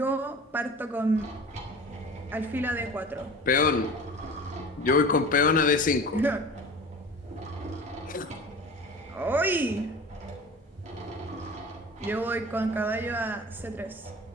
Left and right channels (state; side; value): normal; both; correlation 0.37